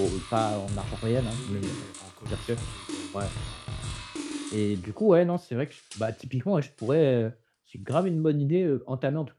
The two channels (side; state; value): both; identical; correlation 1.00